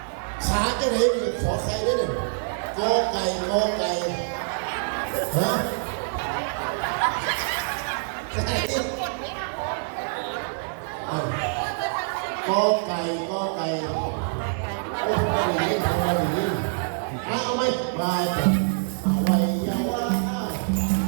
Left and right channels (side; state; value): left; silent; digital silence